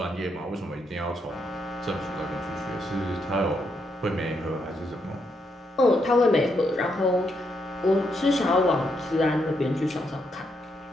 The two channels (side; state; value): both; normal; correlation 0.78